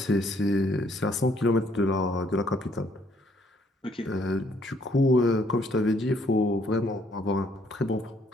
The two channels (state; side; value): normal; both; correlation 0.66